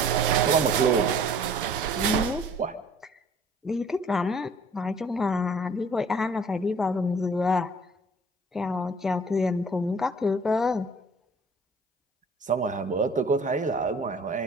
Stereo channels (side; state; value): both; normal; correlation 0.52